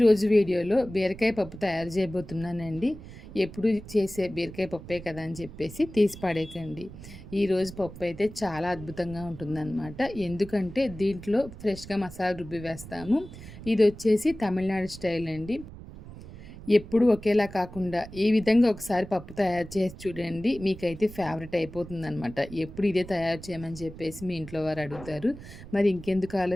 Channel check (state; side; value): noise; right; rumble, 15 dB below the sound